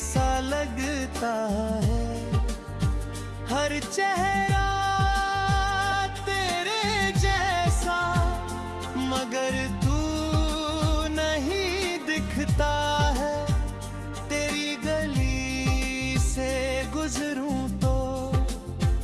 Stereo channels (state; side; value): identical; both; correlation 1.00